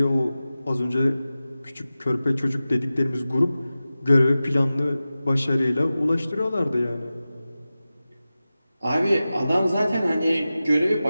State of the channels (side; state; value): both; inverted; correlation -0.95